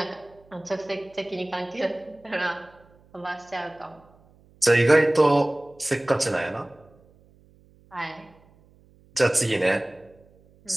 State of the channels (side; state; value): right; noise; hum, 29 dB below the sound